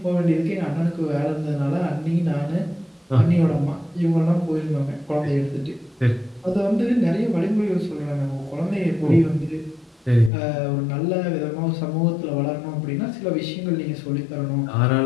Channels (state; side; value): drops out; right; at 10.3 s